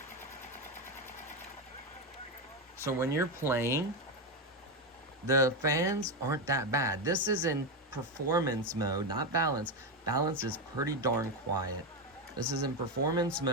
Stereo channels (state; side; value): normal; both; correlation 0.10